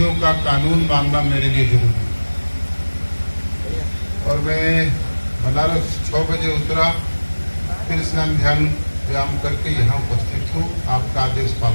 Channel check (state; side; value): inverted; both; correlation -1.00